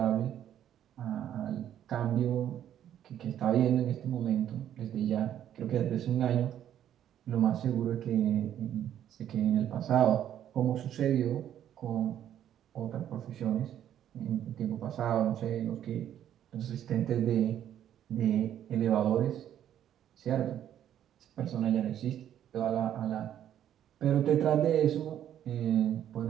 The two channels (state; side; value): quieter; left; 10.7 dB